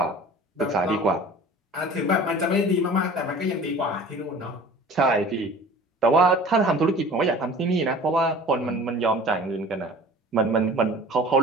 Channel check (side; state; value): both; normal; correlation 0.43